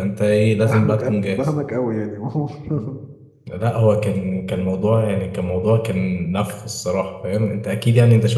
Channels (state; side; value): identical; both; correlation 1.00